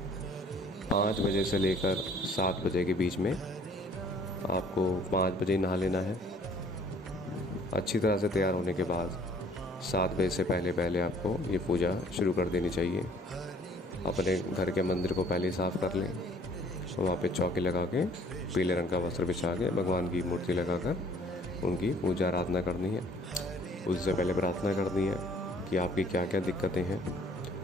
5 बजे से लेकर 7 बजे के बीच में आपको 5 बजे नहा लेना है। अच्छी तरह से तैयार होने के बाद 7 बजे से पहले पहले आपको ये पूजा शुरू कर देनी चाहिए। अपने घर के मंदिर को पहले साफ़ कर लें, वहाँ पे चौकी लगा के पीले रंग का वस्त्र बिछा के भगवान की मूर्ति लगाकर उनकी पूजा आराधना करनी है। उससे पहले प्रार्थना करनी है कि आपकी क्या क्या दिक्कतें हैं,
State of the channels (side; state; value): both; normal; correlation 0.57